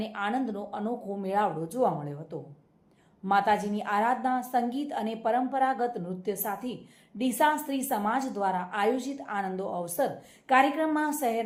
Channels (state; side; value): identical; both; correlation 1.00